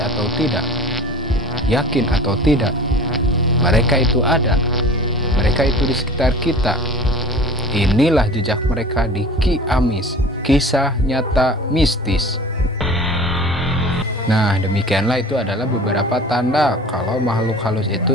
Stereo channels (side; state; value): both; normal; correlation 0.40